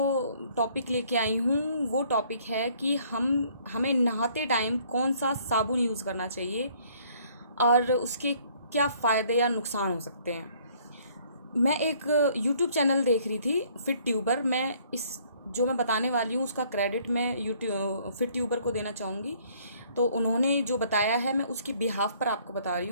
टॉपिक लेके आई हूँ वो टॉपिक है कि हमें नहाते टाइम कौन सा साबुन यूज़ करना चाहिए और उसके क्या फ़ायदे या नुकसान हो सकते हैं। मैं एक यूट्यूब चैनल देख रही थी, फिट ट्यूबर। मैं इस जो मैं बताने वाली हूँ उसका क्रेडिट मैं यूट्यूब फिट ट्यूबर को देना चाहूँगी। तो उन्होंने जो बताया है मैं उसकी बिहाफ पर आपको बता रही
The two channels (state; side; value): inverted; both; correlation -0.61